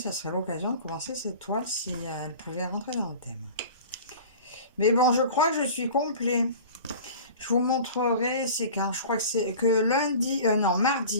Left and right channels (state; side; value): inverted; both; correlation -0.39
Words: ça serait l'occasion de commencer cette toile si elle pouvait rentrer dans le thème. Mais bon, je crois que je suis complet. Je vous montrerai, c'est quand, je crois que c'est que lundi, non,